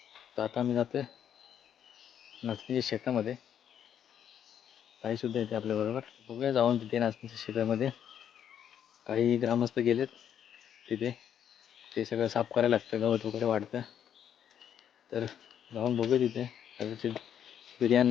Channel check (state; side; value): quieter; right; 9.2 dB